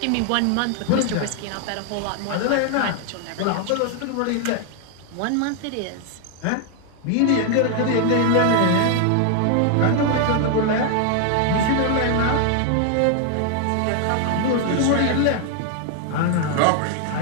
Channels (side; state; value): both; different; correlation 0.00